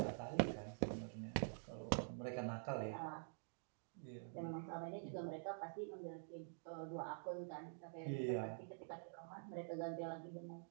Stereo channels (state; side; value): silent; left; digital silence